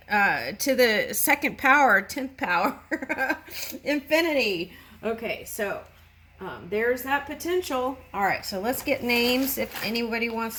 to the second power, 10th power, infinity. Okay, so there's that potential. All right, so let's get names if anybody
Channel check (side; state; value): both; identical; correlation 1.00